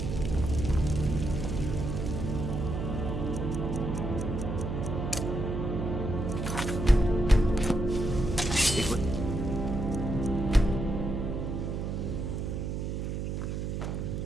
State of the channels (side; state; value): right; noise; hum, 3 dB below the sound